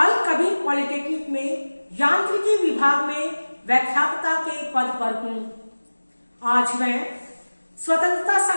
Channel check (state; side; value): inverted; both; correlation -1.00